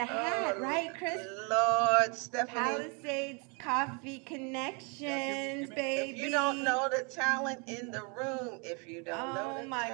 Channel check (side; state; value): left; quieter; 34.0 dB